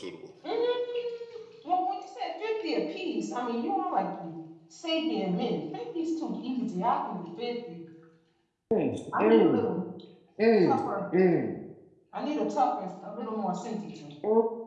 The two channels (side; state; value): both; identical; correlation 1.00